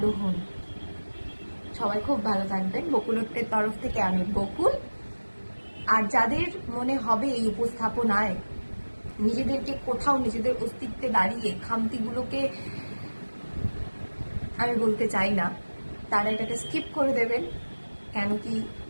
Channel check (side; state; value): both; inverted; correlation -1.00